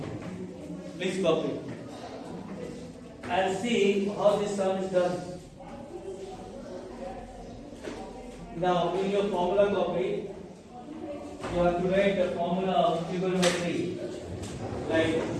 Please copy. And see how this sum is done. Now, in your formula copy, you have to write the formula of trigonometry. Like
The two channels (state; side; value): identical; both; correlation 1.00